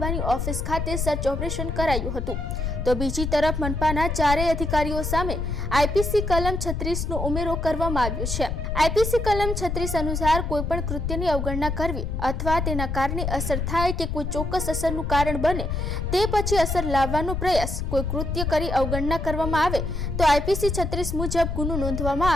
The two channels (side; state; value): left; noise; rumble, 3 dB below the sound